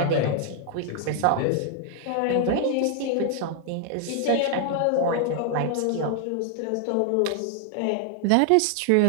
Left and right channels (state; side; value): different; both; correlation 0.00